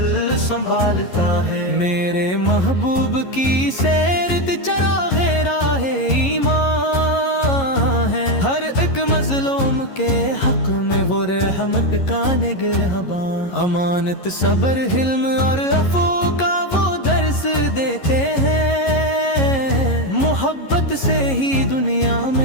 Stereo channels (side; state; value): right; late; 11 ms